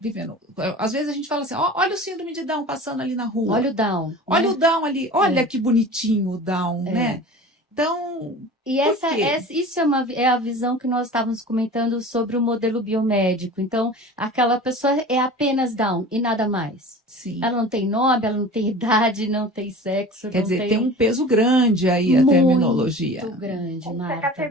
Às vezes a gente fala assim, olha o síndrome de Down passando ali na rua. Olha o Down. Olha né? o Down ali, olha que bonitinho o Down, né? Então, e isso é a visão que nós estávamos comentando sobre o modelo biomédico. Então, aquela pessoa é apenas Down e nada mais. Sim. Ela não tem nome, ela não tem idade, não tem sexo. Quer dizer, tem um peso grande aí a terminologia. Muito grande, Marta. A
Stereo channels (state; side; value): normal; both; correlation 0.38